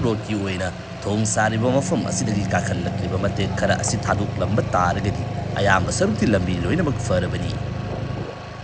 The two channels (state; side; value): identical; both; correlation 1.00